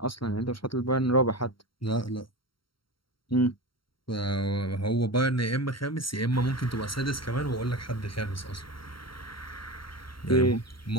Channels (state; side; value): late; right; 0.73 ms